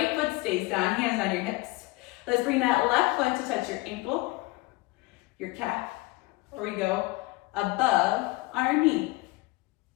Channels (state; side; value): quieter; right; 22.0 dB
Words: foot stays down, hands on your hips. Let's bring that left foot to touch your ankle, your calf, or we go above our knee.